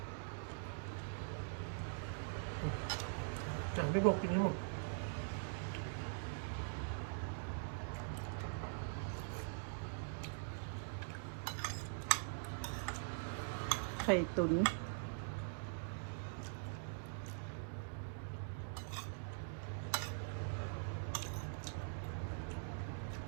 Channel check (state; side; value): silent; left; digital silence